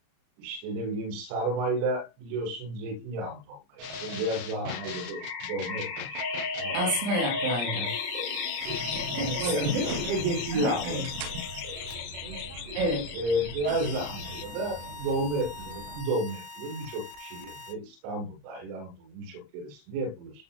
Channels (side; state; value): left; late; 34 ms